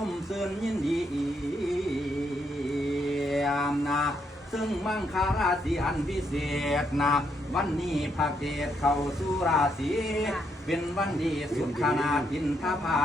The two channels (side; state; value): both; normal; correlation 0.76